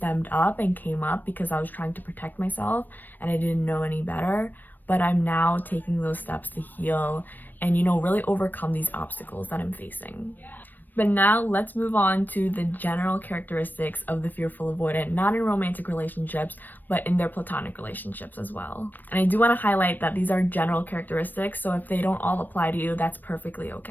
up and came up because I was trying to protect myself and I didn't know any better, but I'm now taking those steps to heal and, really overcome these obstacles that I'm facing. But now let's move on to the general characteristics of the fearful avoidant, not in romantic relationships, but in their platonic relationships as well. And I do want to highlight that these are general characteristics, so if they don't all apply to you, that's perfectly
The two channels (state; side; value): late; right; 0.090 ms